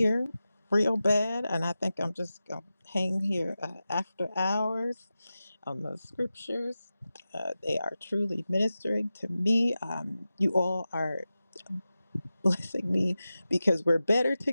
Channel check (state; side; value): inverted; both; correlation -0.94